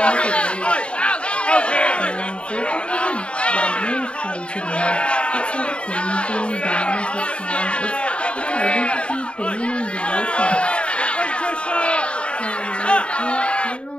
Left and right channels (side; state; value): right; late; 0.057 ms